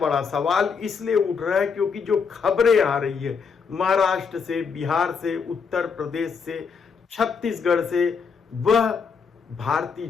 सवाल इसलिए उठ रहा है क्योंकि जो खबरें आ रही है महाराष्ट्र से, बिहार से, उत्तर प्रदेश से, छत्तीसगढ़ से, वह भारतीय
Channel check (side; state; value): right; quieter; 5.8 dB